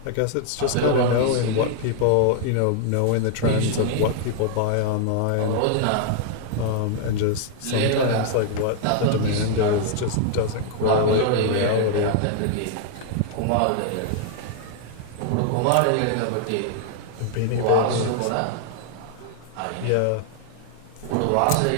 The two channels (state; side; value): different; both; correlation 0.00